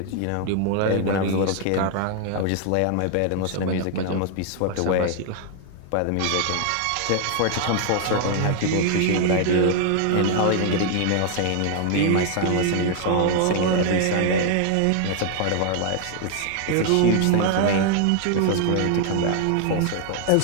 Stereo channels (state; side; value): different; both; correlation 0.00